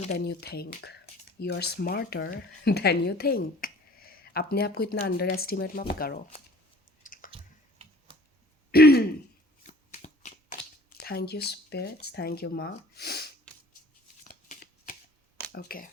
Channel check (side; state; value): both; normal; correlation 0.50